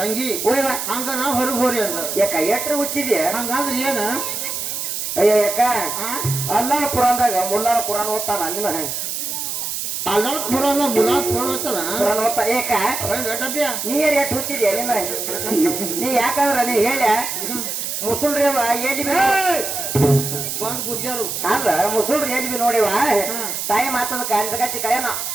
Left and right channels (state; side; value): noise; right; hiss, 4 dB below the sound